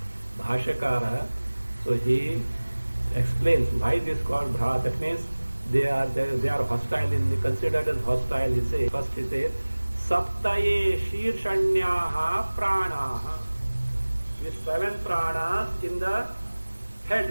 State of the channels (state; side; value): inverted; both; correlation -1.00